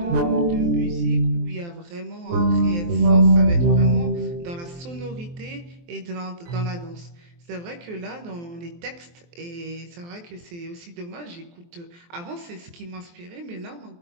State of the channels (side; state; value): left; late; 23 ms